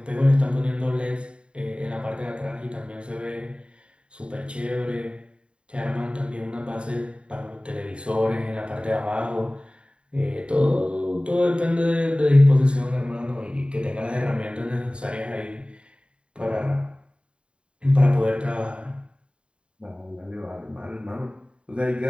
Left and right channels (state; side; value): late; left; 0.055 ms